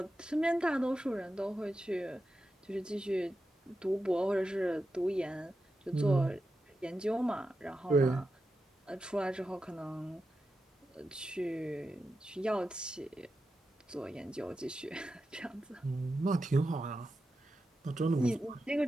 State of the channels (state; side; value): normal; both; correlation 0.90